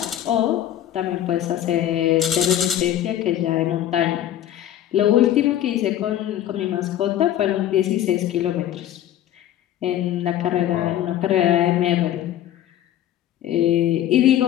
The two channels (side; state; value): right; quieter; 11.8 dB